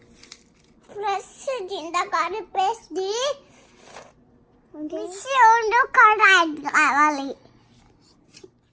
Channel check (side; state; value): both; identical; correlation 1.00